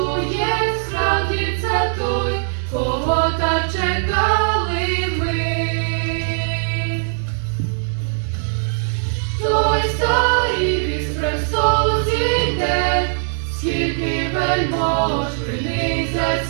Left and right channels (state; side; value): silent; left; digital silence